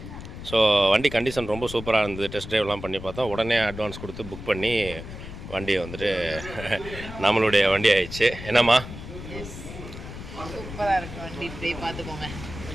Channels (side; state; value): left; noise; rumble, 11 dB below the sound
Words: ஸோ வண்டி கண்டிஷன் ரொம்ப சூப்பராக இருந்தது. டெஸ்ட் ட்ரைவ்லாம் பண்ணி பார்த்தோம். உடனே அட்வான்ஸ் கொடுத்து புக் பண்ணி வண்டியை வந்துட்டு நம்மளுடைய வண்டி ஆயிடுச்சு. என்னம்மா? சூப்பராக இருக்கு வண்டி, இப்படி பார்த்துக்கோங்க.